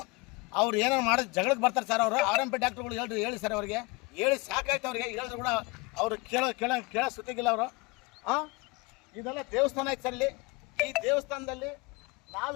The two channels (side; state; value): right; quieter; 25.7 dB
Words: ಅವ್ರು ಏನೇನು ಮಾಡೋದು ಜಗಳಕ್ಕೆ ಬರ್ತಾರೆ ಸರ್. RMP ಡಾಕ್ಟರ್ಗಳು ಹೇಳಿ ಸರ್, ಅವ್ರಿಗೆ ಹೇಳಿ ಸಾಕಾಯ್ತು. ಅವ್ರಿಗೆ ಹೇಳಿದ್ರು ಕೂಡ ಅವರು ಕೇಳೋ ಸುತ್ತಿಗಿಲ್ಲ ಅವರು. ಇದೆಲ್ಲ ದೇವಸ್ಥಾನ ಐತೆ ಸರ್. ಈ ದೇವಸ್ಥಾನದಲ್ಲಿ